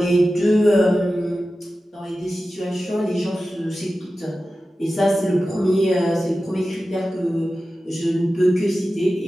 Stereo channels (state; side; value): normal; both; correlation 0.94